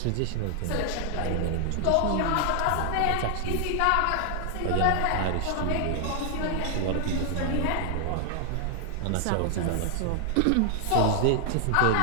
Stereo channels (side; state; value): both; different; correlation 0.00